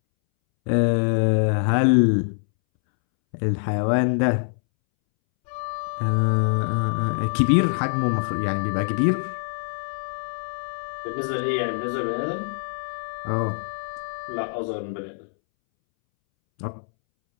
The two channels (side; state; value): right; silent; 62 dB below the other